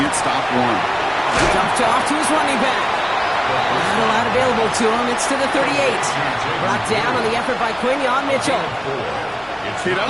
stop one. Dumped off to his running back. Not a lot available to him. It's to the 38. Brought down on the effort by Quinion Mitchell. Kid, I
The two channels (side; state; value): both; identical; correlation 1.00